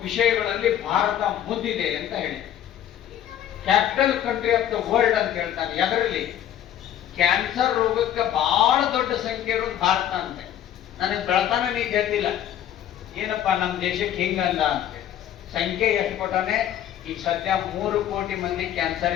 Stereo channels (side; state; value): right; quieter; 10.9 dB